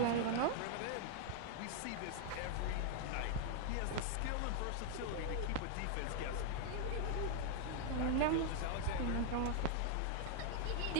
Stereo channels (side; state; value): both; different; correlation 0.00